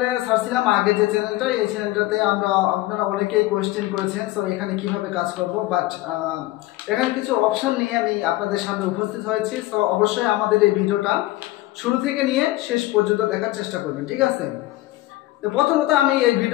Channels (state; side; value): quieter; right; 17.6 dB